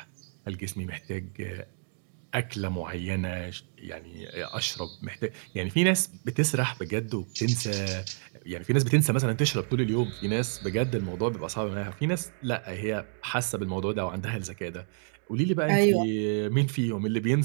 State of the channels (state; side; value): silent; left; 58 dB below the other